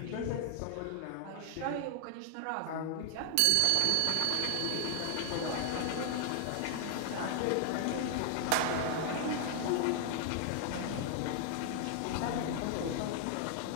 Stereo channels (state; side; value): different; both; correlation 0.00